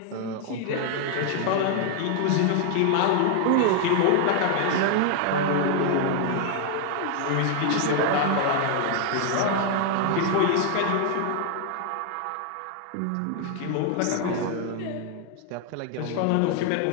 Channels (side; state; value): both; different; correlation 0.00